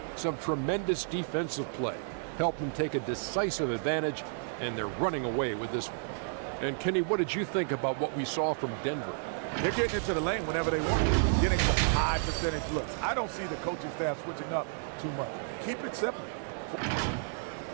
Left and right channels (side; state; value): left; silent; digital silence